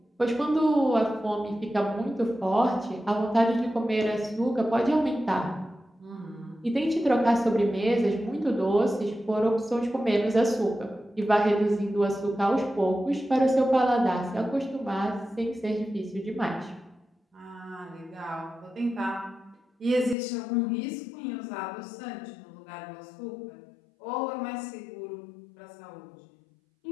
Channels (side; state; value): right; drops out; at 20.2 s